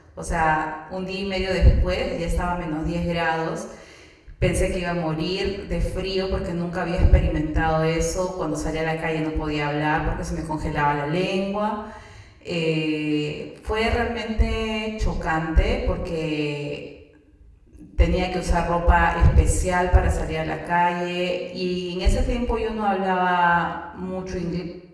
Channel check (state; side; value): identical; both; correlation 1.00